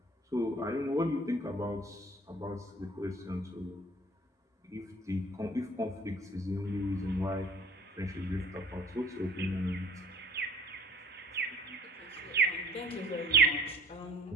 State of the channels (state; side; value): normal; both; correlation 0.51